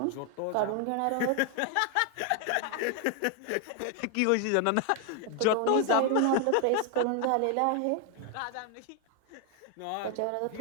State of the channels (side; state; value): both; different; correlation 0.00